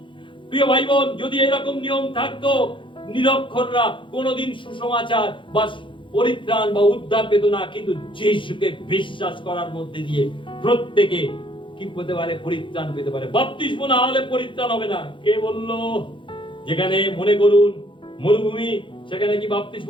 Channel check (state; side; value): late; right; 0.24 ms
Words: প্রিয় ভাই বোন, যদি এরকম নিয়ম থাকতো, নিরক্ষররা কোনোদিন সুসমাচার বা পরিত্রাণ বা উদ্ধার পেত না। কিন্তু যিশুকে বিশ্বাস করার মধ্যে দিয়ে প্রত্যেকে কি পেতে পারে? পরিত্রাণ পেতে পারে। বাপ্তিস্ম না হলে পরিত্রাণ হবে না। কে বলল? যেখানে মনে করুন মরুভূমি, সেখানে কি বাপ্তিস্ম